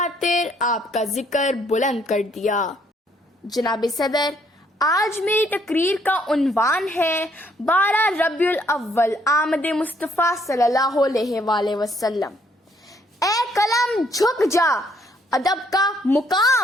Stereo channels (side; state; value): both; normal; correlation 0.68